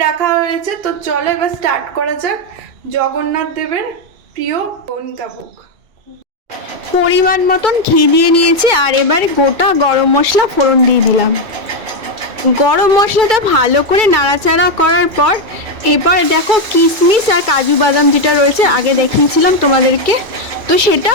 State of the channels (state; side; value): late; left; 2.3 ms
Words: রাখা হয়েছে। তো চলো এবার স্টার্ট করা যাক জগন্নাথ দেবের প্রিয় কণিকা ভোগ। পরিমাণ মতন ঘি দিয়ে নিয়েছি, আর এবারে গোটা গরম মশলা ফোড়ন দিয়ে দিলাম। গরম মশলাটা ভালো করে নাড়াচাড়া করার পর এবার দেখো কিশমিশ আর কাজু বাদাম যেটা রয়েছে আগে দেখিয়েছিলাম তোমাদেরকে, তো সেটা